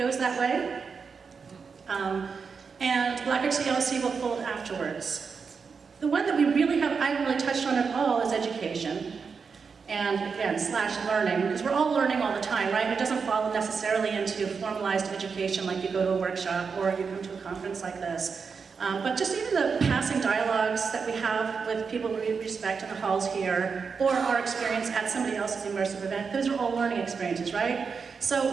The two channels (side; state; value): left; quieter; 5.5 dB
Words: that way. And Black Rock GLC will fold afterwards. The one that we really I haven't really touched on at all is education. And again, / learning, because we're all learning all the time, right? It doesn't fall necessarily into formalized education like you go to a workshop or you come to a conference like this. But just even the passing dialogues that we have with people we respect in the halls here, or our experience at somebody else's immersive event, those are all learning experiences, right? So